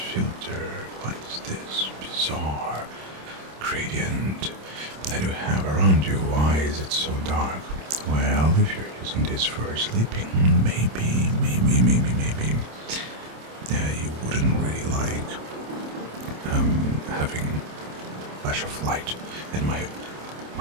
filter? What is this bizarre gradient that you have around you? Why is it so dark? Well, if you're using this for sleeping, maybe you wouldn't really like having flash of light. And my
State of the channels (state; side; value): late; left; 27 ms